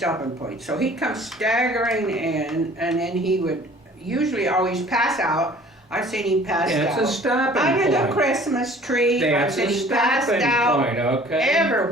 points. So he'd come staggering in, and then he would usually always pass out. I've seen him pass That's out a stopping under point. the Christmas tree. That's I've a seen him passed stopping out point, okay?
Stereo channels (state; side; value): normal; both; correlation 0.50